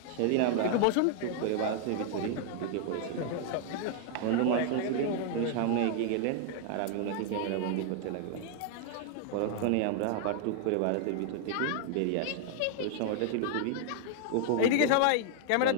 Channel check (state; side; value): different; both; correlation 0.00